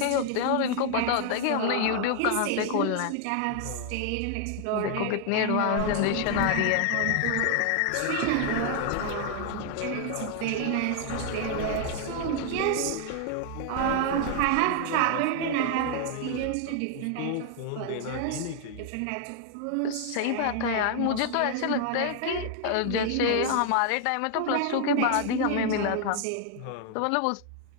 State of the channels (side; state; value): both; different; correlation 0.00